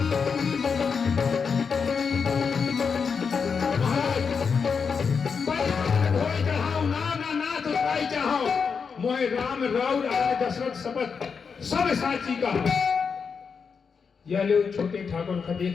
मोहे राम राउर आने दशरथ शपथ सब साची का। यह लो छोटे ठाकुर का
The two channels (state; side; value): quieter; right; 5.8 dB